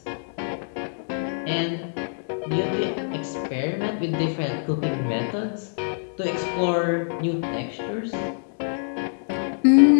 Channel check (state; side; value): silent; right; digital silence